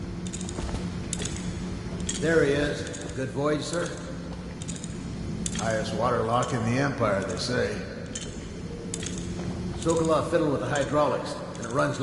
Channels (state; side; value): identical; both; correlation 1.00